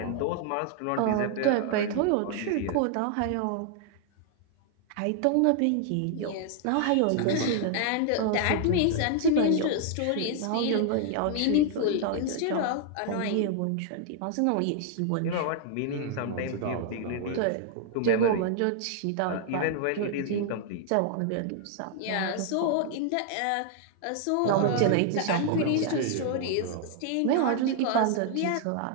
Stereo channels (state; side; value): different; both; correlation 0.00